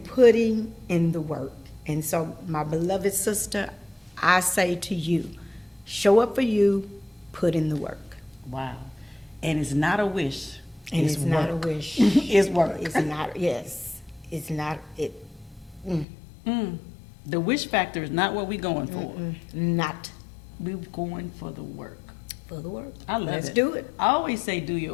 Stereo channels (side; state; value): right; drops out; at 16.1 s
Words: in the work. And so, my beloved sister, I say to you, show up for you, put in the work. Wow. And it's not a wish. And it's not a wish. It's work. It's not, yes. It's not, it. The wish factor is not what we're going for. Not. We're going for the work. For the work. I love it. Let's do it. I always say do your